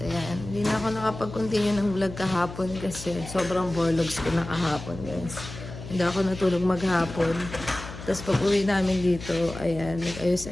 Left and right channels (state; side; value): noise; left; hum, 12 dB below the sound